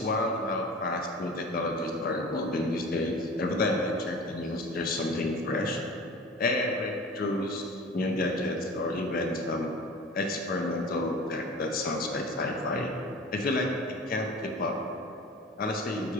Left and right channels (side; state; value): both; normal; correlation 0.38